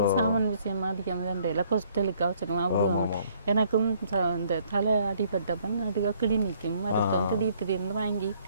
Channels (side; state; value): both; inverted; correlation -0.64